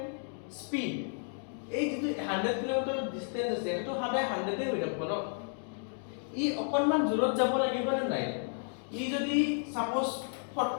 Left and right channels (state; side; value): silent; right; 56 dB below the other